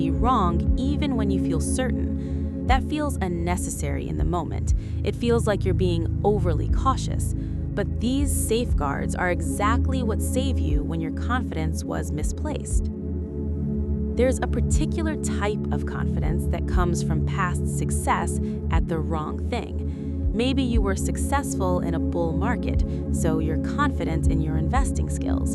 wrong, even when you feel certain. That feels unnecessary in the moment. It feels like you're being overly cautious. But these safeguards are exactly what save you when your confidence was misplaced. There's a particular type of confidence that comes from past success at the wrong thing. Maybe you were successful in a bull market, so you're confident in your investing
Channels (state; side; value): identical; both; correlation 1.00